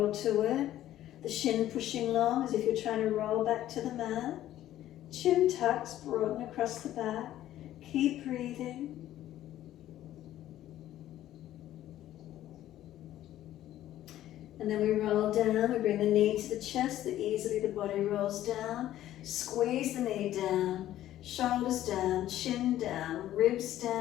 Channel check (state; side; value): quieter; right; 13.1 dB